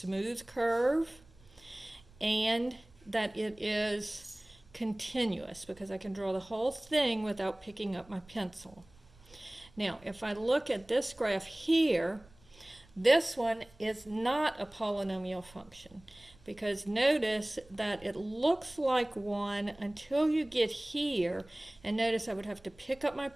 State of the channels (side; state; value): right; noise; rumble, 27 dB below the sound